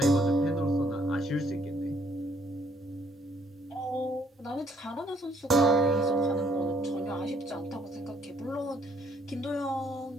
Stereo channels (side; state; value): both; normal; correlation 0.65